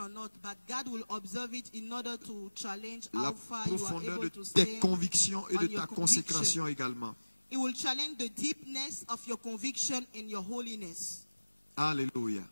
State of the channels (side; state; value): both; inverted; correlation -1.00